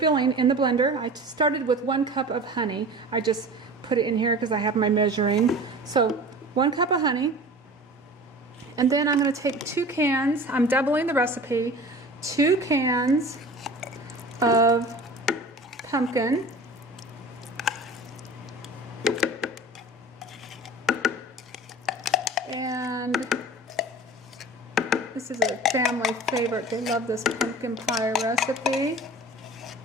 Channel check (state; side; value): normal; both; correlation 0.39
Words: in the blender, I started with 1 cup of honey. I just put it in here because I have my measuring. So 1 cup of honey. And then I'm going to take 2 cans, I'm doubling the recipe, 2 cans of pumpkin. And this is a family favorite. They love this pumpkin pie recipe.